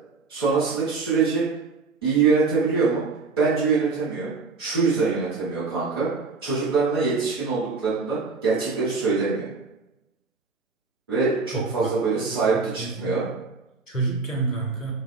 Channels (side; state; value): left; quieter; 4.3 dB